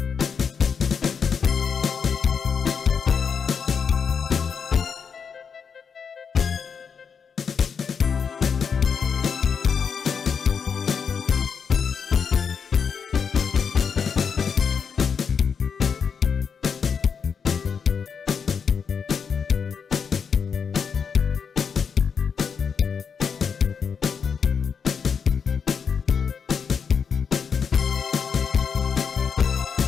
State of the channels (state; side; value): quieter; right; 6.4 dB